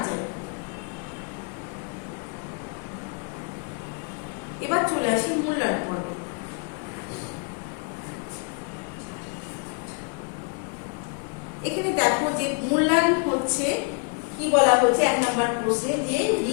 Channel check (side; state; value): right; quieter; 37.5 dB